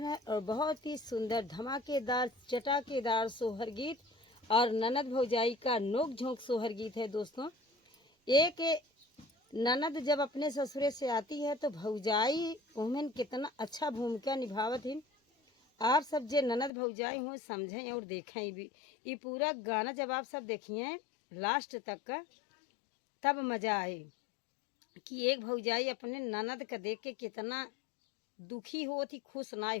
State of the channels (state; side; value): drops out; right; at 16.7 s